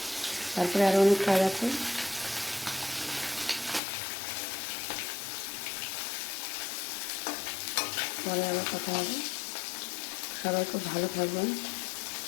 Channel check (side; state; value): right; drops out; at 3.8 s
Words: তারপরে আরও অনেক কাজ আছে। পরে আবার কথা হবে। সবাই খুব ভালো থাকবেন।